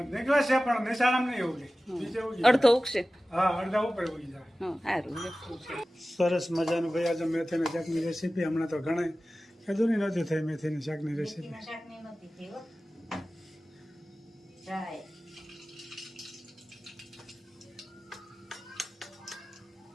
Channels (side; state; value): both; normal; correlation 0.96